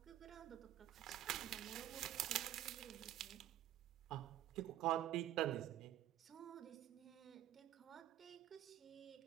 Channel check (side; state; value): left; quieter; 12.9 dB